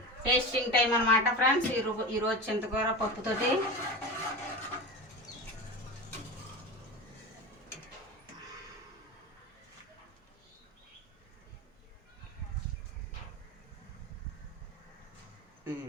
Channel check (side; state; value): both; normal; correlation 0.27